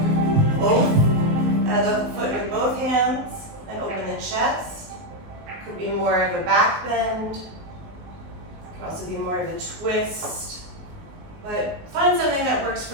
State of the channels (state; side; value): late; left; 19 ms